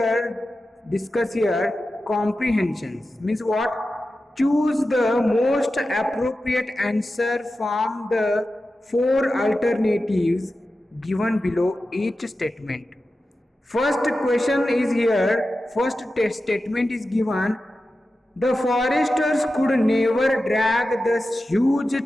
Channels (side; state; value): both; normal; correlation 0.93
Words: here comprehensions. Means what? Choose the most appropriate answer from the four alternatives given below each statement. First question is here, first statement is given. The foresters could never drag the huge